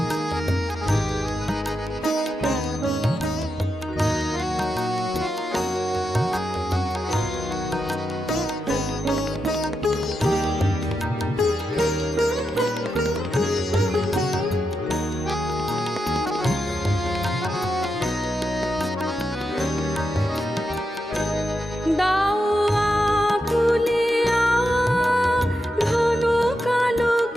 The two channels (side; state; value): both; normal; correlation 0.86